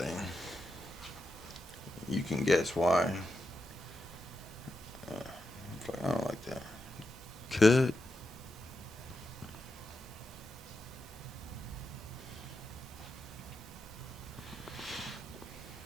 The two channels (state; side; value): normal; both; correlation 0.86